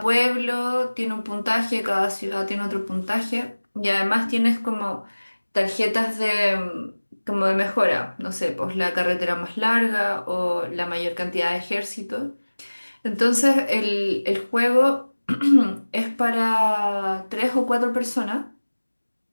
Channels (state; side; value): inverted; both; correlation -1.00